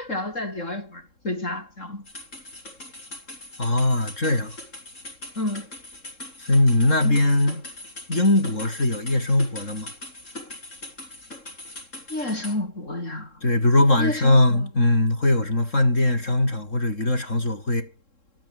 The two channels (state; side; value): late; right; 3.7 ms